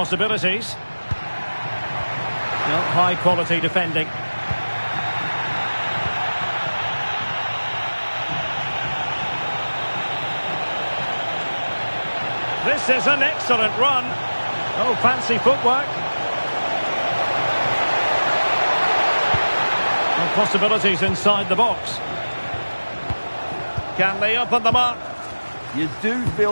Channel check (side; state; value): both; inverted; correlation -1.00